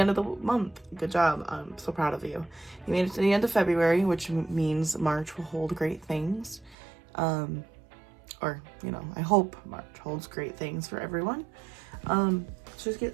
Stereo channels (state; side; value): drops out; left; at 6.8 s